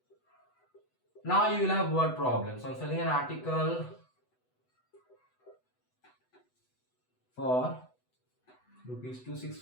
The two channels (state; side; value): late; right; 8.0 ms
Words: Now you will have word problems. On selling an article for rupees